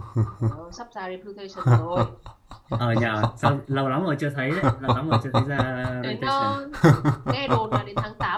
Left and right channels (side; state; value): both; identical; correlation 1.00